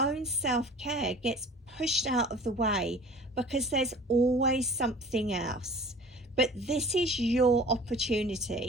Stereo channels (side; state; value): both; normal; correlation 0.44